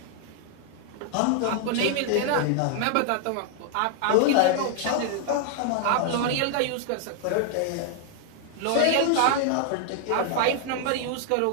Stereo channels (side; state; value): both; different; correlation 0.00